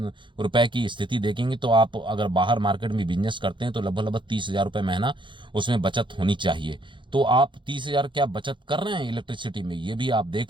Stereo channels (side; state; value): left; late; 0.23 ms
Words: रुपए की स्थिति देखेंगे तो आप अगर बाहर मार्केट में बिजनेस करते हैं तो लगभग 30,000 रुपए महीना उसमें बचत होनी चाहिए। तो आप 30,000 क्या बचत कर रहे हैं इलेक्ट्रिसिटी में, ये भी आप